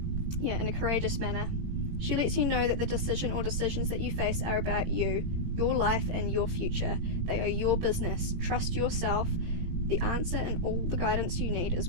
Yeah, in a courageous manner. She lets you know that the decision or decisions that you face are about you, your life and your future. They are your business. Trust yourself. The answer and all the guidance you need is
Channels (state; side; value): late; left; 18 ms